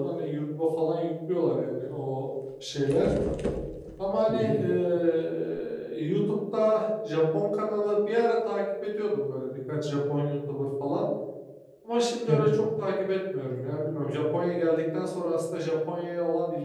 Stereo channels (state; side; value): identical; both; correlation 1.00